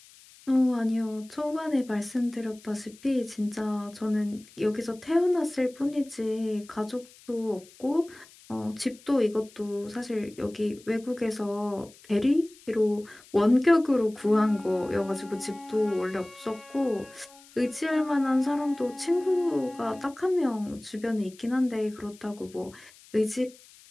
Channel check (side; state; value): left; noise; hiss, 24 dB below the sound